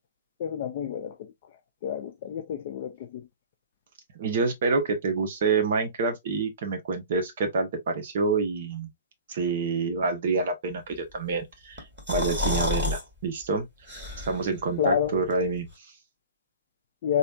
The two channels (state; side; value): inverted; both; correlation -0.39